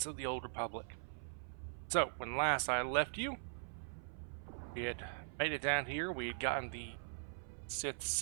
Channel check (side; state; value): left; silent; 50 dB below the other